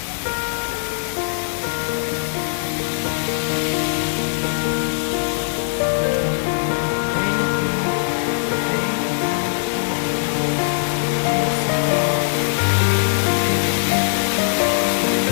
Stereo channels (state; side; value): silent; right; 65 dB below the other